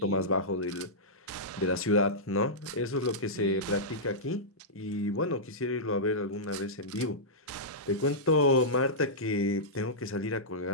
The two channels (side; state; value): both; normal; correlation -0.13